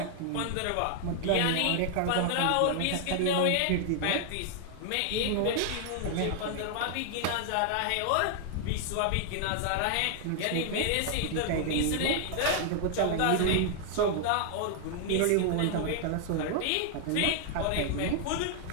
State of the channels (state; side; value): different; both; correlation 0.00